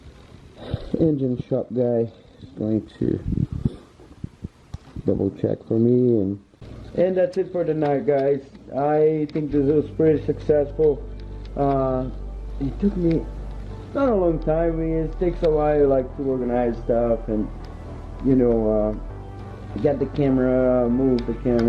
engine shop guy is going to double check for me, and that's it for tonight, guys. I think this was pretty successful. It took me not a long time. I mean, it takes a while, like, to organize stuff and, you know, get the camera, move the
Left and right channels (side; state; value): both; identical; correlation 1.00